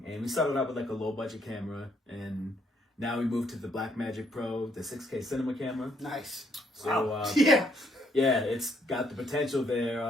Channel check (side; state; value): both; normal; correlation 0.71